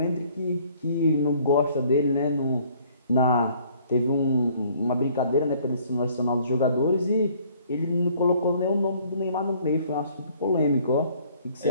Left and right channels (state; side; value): inverted; both; correlation -0.59